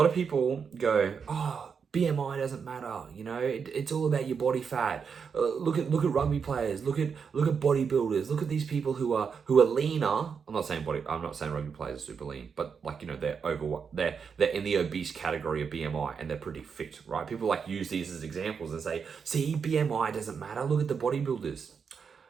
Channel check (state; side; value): quieter; left; 6.2 dB